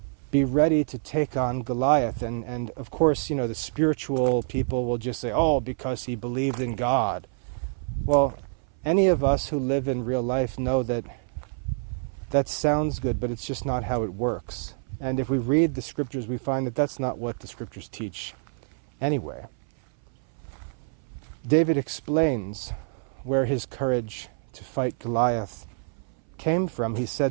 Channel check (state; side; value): silent; left; 58 dB below the other